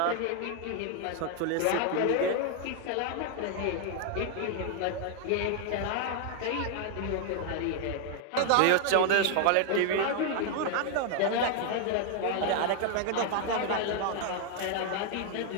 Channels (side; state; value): both; different; correlation 0.00